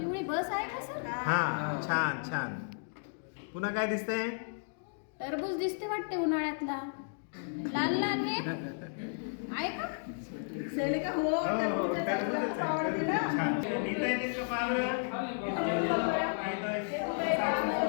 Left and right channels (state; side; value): silent; right; digital silence